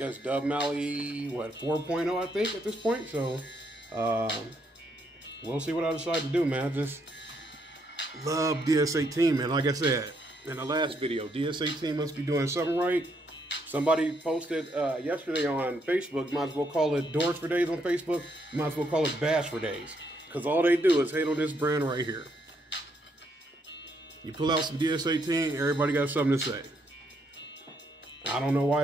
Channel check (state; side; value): normal; both; correlation 0.74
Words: Dub Mally, what, 4.0, I think, at this point. So we'll see what I decide to do, man. Just love DS18, man. Like I said in the last video, DS18 must be doing something right. Somebody posted yesterday on Facebook, might as well call it Doors for Days on Facebook, might as well call it Bash for Days, because all they do is hate on this brand right here. You pull out some DS18, everybody got something to say. I don't know why